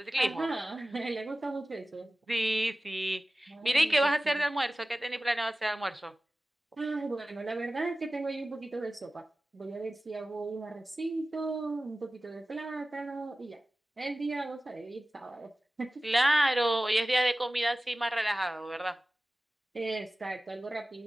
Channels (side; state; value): both; normal; correlation 0.96